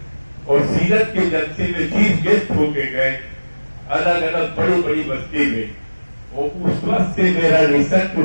اور سیرت کے جلسے میں چیف گیسٹ ہو کے گئے الگ الگ بڑی بڑی بستی میں. اور اس وقت سے میرا ریسرچ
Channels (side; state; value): both; inverted; correlation -1.00